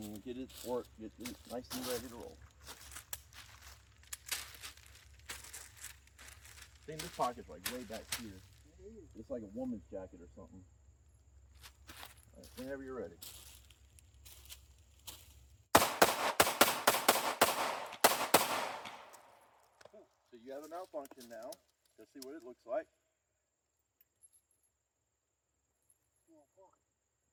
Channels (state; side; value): identical; both; correlation 1.00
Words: get it nice and ready to roll. I think this pocket's like way back here. It's like a woman's jacket or something. All right, whenever you're ready. So you have a malfunction now. Let's see what it looks like.